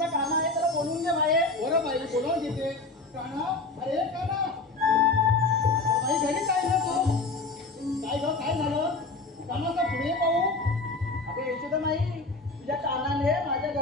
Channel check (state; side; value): quieter; right; 3.4 dB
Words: काना आहे, त्याला बोलून घे बाहेर. बरं बाई, बोलावून घेते. काना, अरे काना, आता बाई घरीच आहे ना तू? काय ग, काय झालं? कानाचा पुढे पाहू. अगं यशोदा माई, तुझ्या कानाने माझ्या